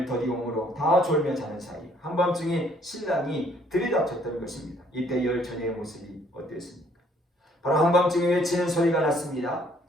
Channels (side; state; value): both; normal; correlation 0.63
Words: 더디옴으로 다 졸며 자는 사이 한밤중에 신랑이 들이닥쳤던 것입니다. 이때 열 처녀의 모습이 어땠습니까? 바로 한밤중에 외치는 소리가 났습니다.